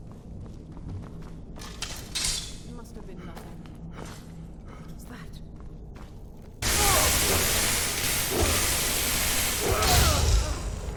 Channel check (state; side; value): identical; both; correlation 1.00